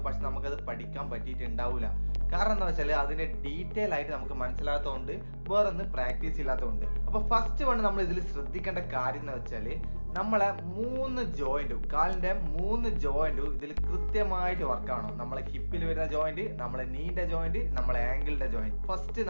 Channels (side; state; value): both; inverted; correlation -1.00